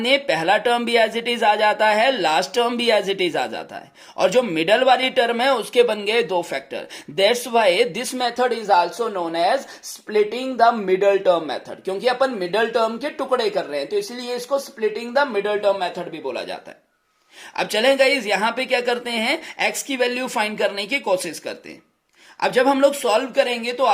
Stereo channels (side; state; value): both; identical; correlation 1.00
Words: दें, पहला टर्म भी एज इट इज आ जाता है, लास्ट टर्म भी एज इट इज आ जाता है, और जो मिडल वाली टर्म है उसके बन गए 2 factor. That's why this method is also known as splitting the middle term method, क्योंकि अपन मिडल टर्म के टुकड़े कर रहे हैं तो इसलिए इसको splitting the middle term method भी बोला जाता है। अब चलें गाइज, यहां पे क्या करते हैं, x की वैल्यू फाइंड करने की कोशिश करते हैं। अब जब हम लोग सॉल्व करेंगे तो